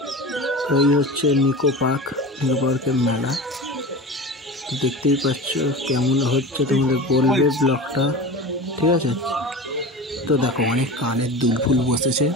তো এই হচ্ছে নিকো পার্কের মেলা। তো দেখতেই পাচ্ছ কেমন হচ্ছে তোমাদের বলবে ব্লগটা ঠিক আছে। তো দেখো অনেক কানের দুল ফুল বসেছে।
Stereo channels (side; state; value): both; normal; correlation 0.31